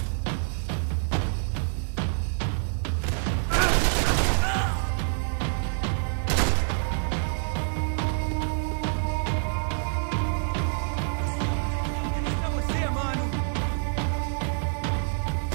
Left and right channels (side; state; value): left; silent; digital silence